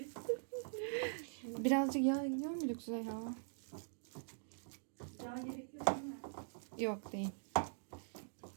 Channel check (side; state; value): left; silent; digital silence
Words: Birazcık yağ gidiyor mu Züleyha? Yağ gerekiyor değil mi? Yok değil.